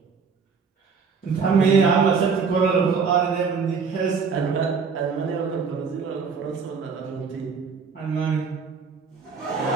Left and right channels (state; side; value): quieter; left; 5.5 dB